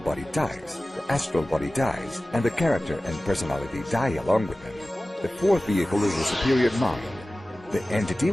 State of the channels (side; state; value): both; normal; correlation 0.97